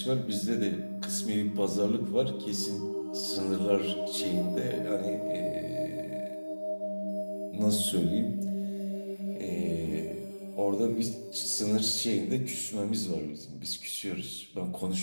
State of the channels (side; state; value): both; inverted; correlation -1.00